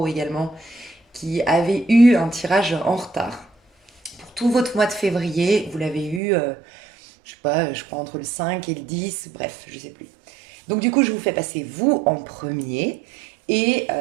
également, qui avez eu un tirage en retard. Pour tout votre mois de février, vous l'avez eu, je sais pas, je crois entre le 5 et le 10, bref, je sais plus. Donc du coup, je vous fais passer vous en premier. Et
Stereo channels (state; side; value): drops out; left; at 6.2 s